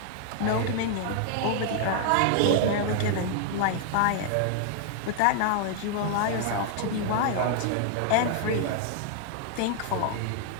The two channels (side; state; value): both; different; correlation 0.00